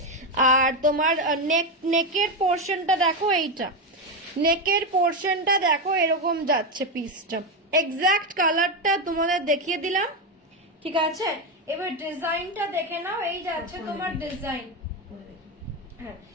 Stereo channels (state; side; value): normal; both; correlation 0.10